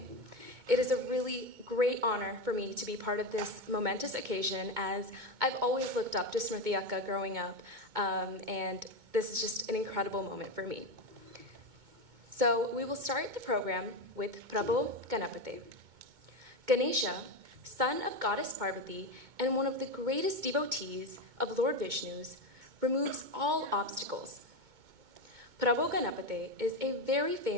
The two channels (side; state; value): left; late; 2.2 ms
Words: It is a really great honor for me to be part of this momentous occasion, as I've always looked up to Smriti Akka growing up, and this is just an incredible moment for me. So we will start the program with Prabhu Ganapate. Ganesha, son of goddess Parvati and one of the greatest devotees of Lord Vishnu's, removes all obstacles. Prabhu Ganapate is a very